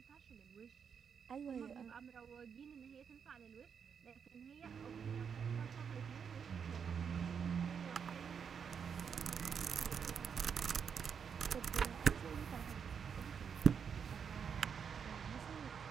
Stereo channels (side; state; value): left; quieter; 6.9 dB